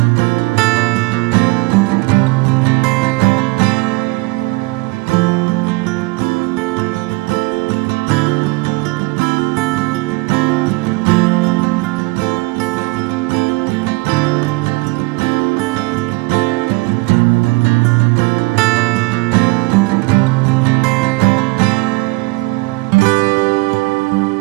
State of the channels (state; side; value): quieter; left; 24.7 dB